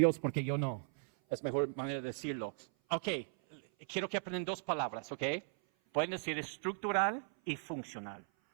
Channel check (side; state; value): left; silent; 53 dB below the other